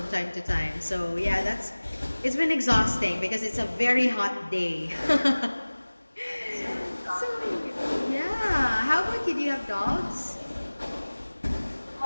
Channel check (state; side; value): inverted; both; correlation -1.00